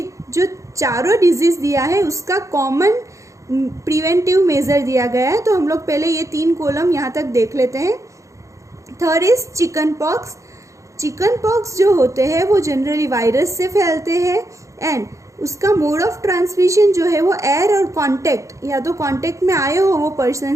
जो चारों डिजीज़ दिया है उसका कॉमन प्रिवेंटिव मेजर दिया गया है। तो हम लोग पहले ये 3 कॉलम यहाँ तक देख लेते हैं। Third is chicken pox. Chicken pox जो होते हैं वो जनरली वायरस से फैलते हैं एंड उसका मोड ऑफ ट्रांसमिशन जो है वो एयर और कांटेक्ट, या तो कांटेक्ट में आए हो वो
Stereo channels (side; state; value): left; late; 0.15 ms